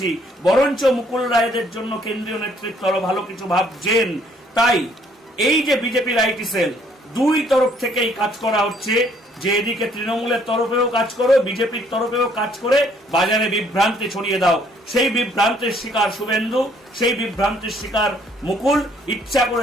বরঞ্চ মুকুল রায়দের জন্য কেন্দ্রীয় নেতৃত্ব আরো ভালো কিছু ভাবছেন। তাই এই যে বিজেপির আইটি সেল, দুই তরফ থেকেই কাজ করা হচ্ছে যে এদিকে তৃণমূলের তরফেও কাজ করো, বিজেপির তরফেও কাজ করে বাজারে বিভ্রান্তি ছড়িয়ে দাও। সেই বিভ্রান্তির শিকার শুভেন্দু, সেই বিভ্রান্তির শিকার মুকুল। ইচ্ছা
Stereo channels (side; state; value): both; normal; correlation 0.64